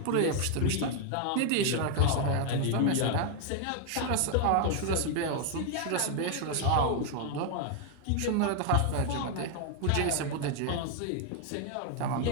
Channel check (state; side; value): different; both; correlation 0.00